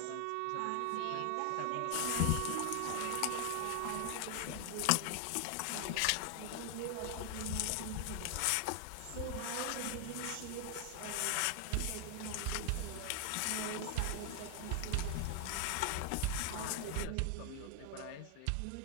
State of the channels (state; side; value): different; both; correlation 0.00